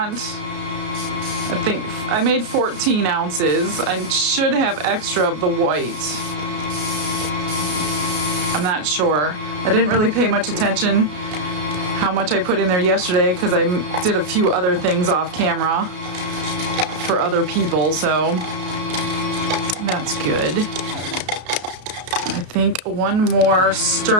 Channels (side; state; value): left; late; 33 ms